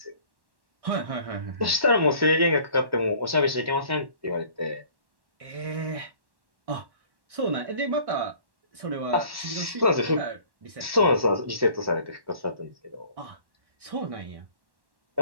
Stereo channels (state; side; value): late; left; 1.1 ms